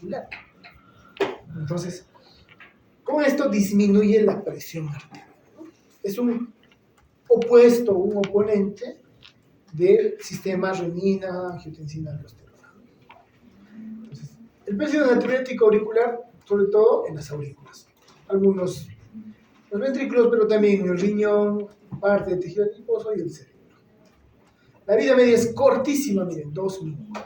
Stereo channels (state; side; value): identical; both; correlation 1.00